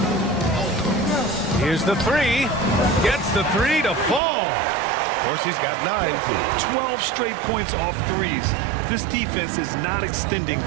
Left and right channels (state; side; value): drops out; left; at 4.2 s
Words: Here's the 3. Gets the 3 to fall. Dorsey's got 9. 12 straight points off threes. This defense is not extending